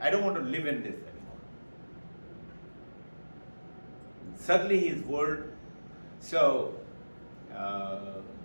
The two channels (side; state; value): both; inverted; correlation -1.00